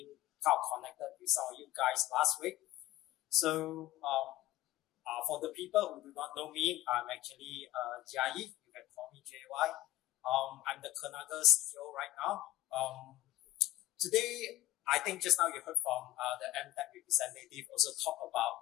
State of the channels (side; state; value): right; quieter; 15.2 dB